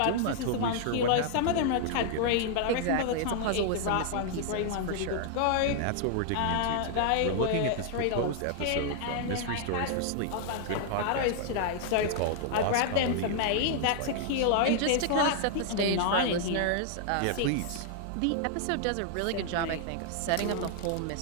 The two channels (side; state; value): both; different; correlation -0.01